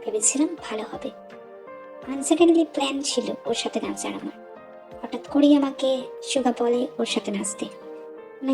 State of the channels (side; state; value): both; identical; correlation 1.00